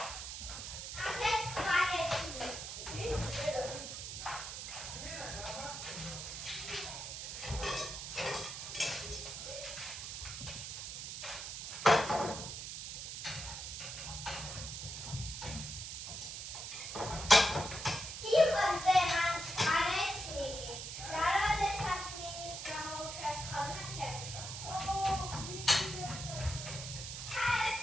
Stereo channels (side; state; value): right; noise; hiss, 7 dB below the sound